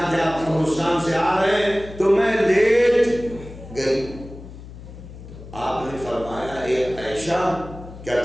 کہ آپ قبرستان سے آ رہے ہیں تو میں لیٹ گئی۔ آپ نے فرمایا اے عائشہ، کیا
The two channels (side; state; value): left; noise; hum, 15 dB below the sound